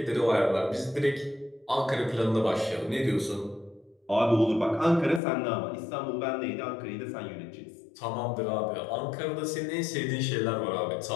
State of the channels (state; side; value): drops out; right; at 5.2 s